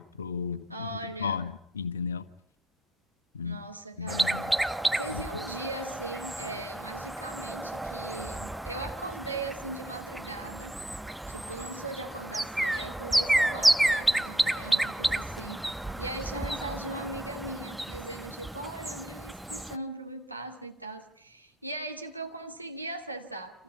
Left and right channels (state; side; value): normal; both; correlation 0.65